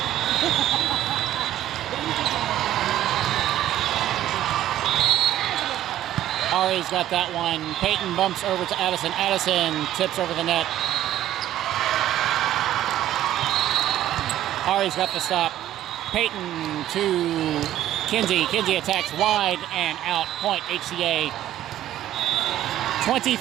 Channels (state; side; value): quieter; left; 12.7 dB